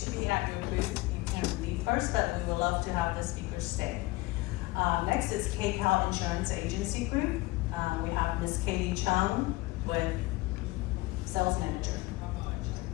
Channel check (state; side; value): quieter; right; 20.7 dB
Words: be at your booth, you can leave first, but we would love to have the speakers stay. Next is KCAL Insurance Agency Group. We have Ms. Katie Chung with Sales Manager.